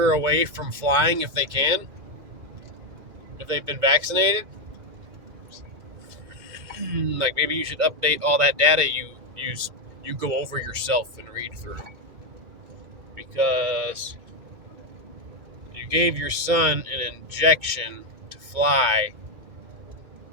away from flying if they can? If they've been vaccinated? Like, maybe you should update all that data you go over yourself and read through. Because you gave your son an injection to fly.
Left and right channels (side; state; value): left; late; 2.1 ms